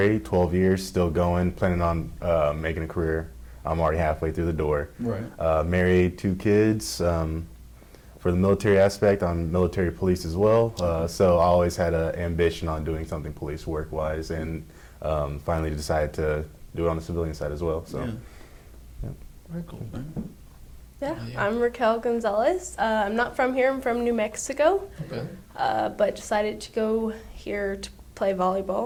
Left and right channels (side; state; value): both; identical; correlation 1.00